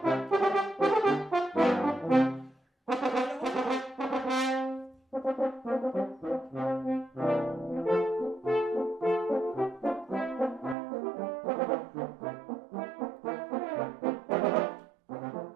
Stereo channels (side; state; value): left; drops out; at 10.8 s